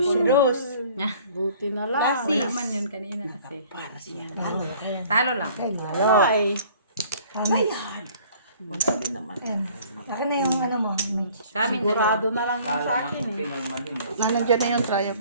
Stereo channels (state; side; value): inverted; both; correlation -0.53